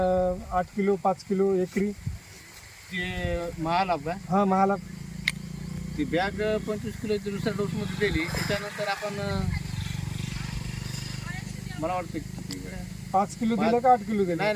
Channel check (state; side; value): identical; both; correlation 1.00